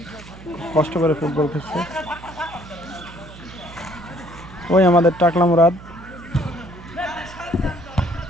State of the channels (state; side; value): noise; right; hum, 17 dB below the sound